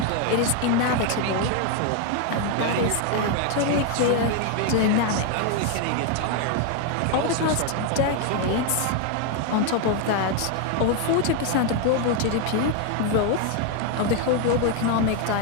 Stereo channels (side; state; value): both; different; correlation 0.01